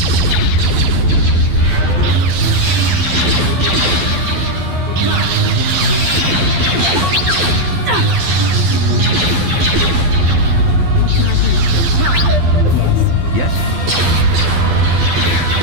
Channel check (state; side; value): late; left; 12 ms